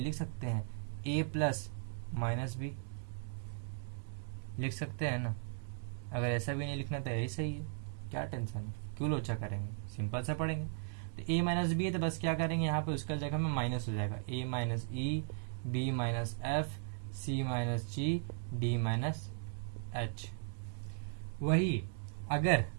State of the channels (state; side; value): silent; left; digital silence